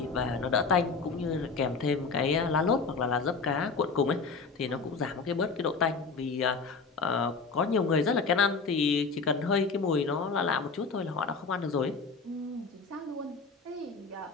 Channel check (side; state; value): right; quieter; 4.6 dB